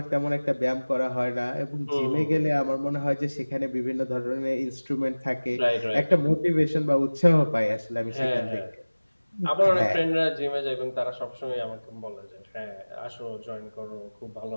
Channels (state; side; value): inverted; both; correlation -1.00